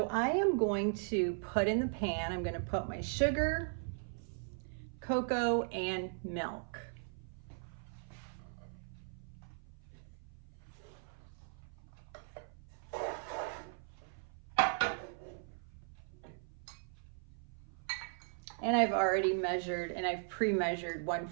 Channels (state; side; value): silent; left; 52 dB below the other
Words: I am going to put in the pan, I'm going to put my sugar, cocoa, and milk. And I've already measured, and I've pre-measured